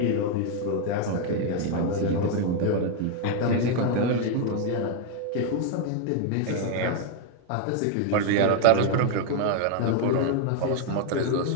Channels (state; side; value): different; both; correlation 0.01